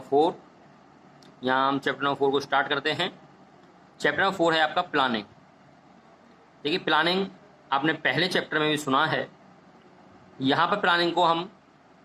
4। यहाँ हम चैप्टर नंबर 4 को स्टार्ट करते हैं। चैप्टर नंबर 4 है आपका प्लानिंग। देखिए, प्लानिंग आपने पहले चैप्टर में भी सुना है। यहाँ पर प्लानिंग को हम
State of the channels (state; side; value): identical; both; correlation 1.00